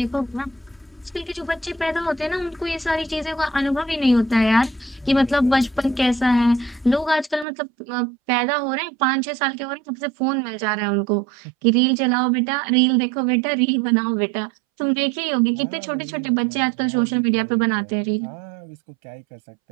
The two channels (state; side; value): drops out; left; at 7.5 s